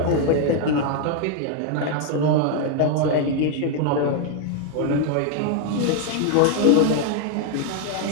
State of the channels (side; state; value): both; different; correlation 0.00